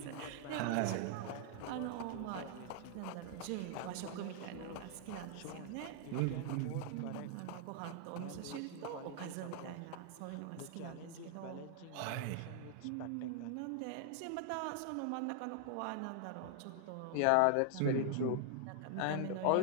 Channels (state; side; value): different; both; correlation 0.00